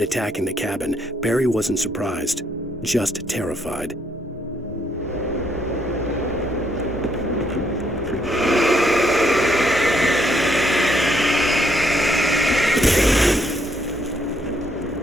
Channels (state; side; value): normal; both; correlation 0.72